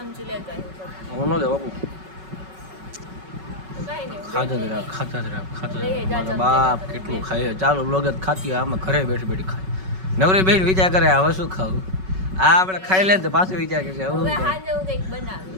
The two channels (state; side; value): late; left; 5.3 ms